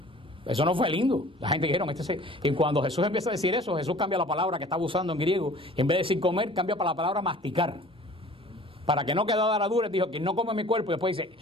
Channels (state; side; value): normal; both; correlation 0.48